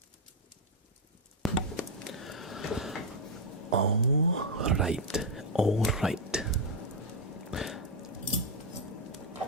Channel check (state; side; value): normal; both; correlation 0.01